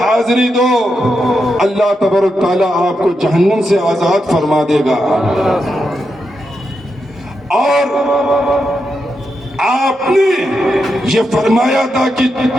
دو، اللہ تبارک تعالیٰ آپ کو جہنم سے آزاد فرما دے گا. اور آپ نے یہ فرمایا تھا کہ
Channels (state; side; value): normal; both; correlation 0.85